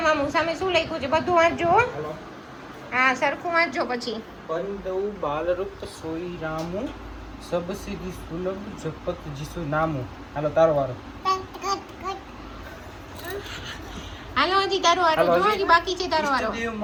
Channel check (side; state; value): both; identical; correlation 1.00